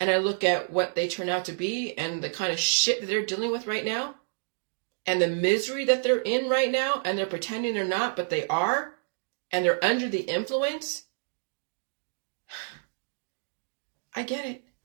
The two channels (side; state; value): left; silent; digital silence